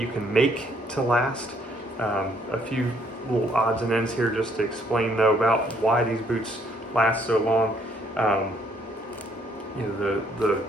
can make to last. A few little odds and ends here just to explain though about why these boots last so long. The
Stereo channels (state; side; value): normal; both; correlation 0.67